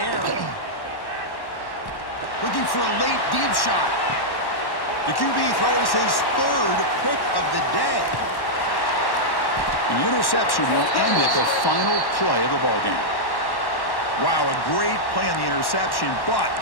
Looking for a late deep shot. The QB throws his third pick of the day. The interception will end at the final play of the ballgame. Wow, a great play on the interception, but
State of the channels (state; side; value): late; right; 1.1 ms